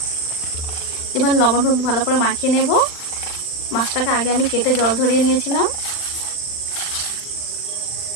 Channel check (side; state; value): right; late; 39 ms